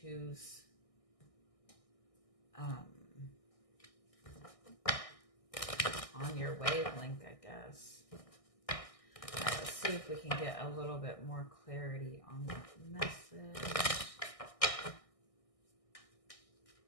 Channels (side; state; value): right; late; 1.6 ms